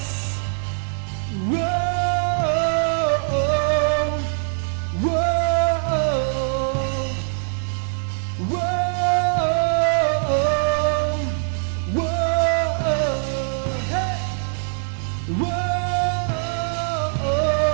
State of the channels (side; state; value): left; silent; digital silence